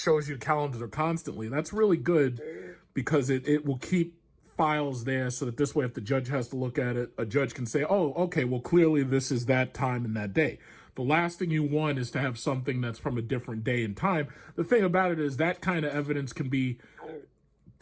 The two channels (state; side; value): identical; both; correlation 1.00